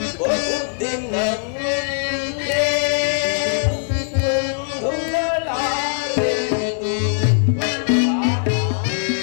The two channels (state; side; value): silent; right; 64 dB below the other